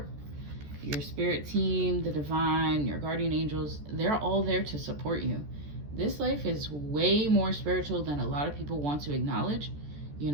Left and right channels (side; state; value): left; late; 14 ms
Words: Your spirit team, the divine, your guardian angels, they're all there to support you. This life is way more spiritual than a lot of people want to acknowledge, you